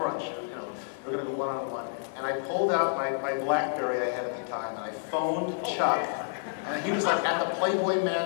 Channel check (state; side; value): silent; right; digital silence